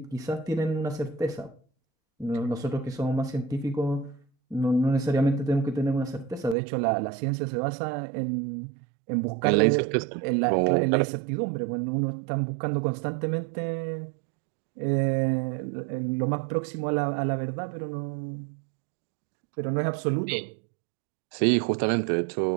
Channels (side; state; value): left; drops out; at 6.6 s